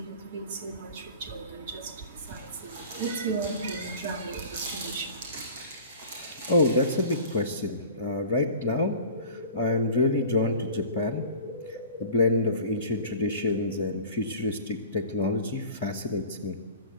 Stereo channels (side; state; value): both; inverted; correlation -0.41